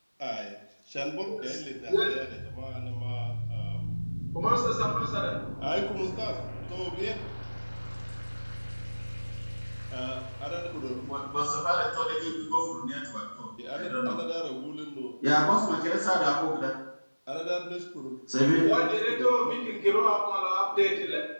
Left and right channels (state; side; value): inverted; both; correlation -1.00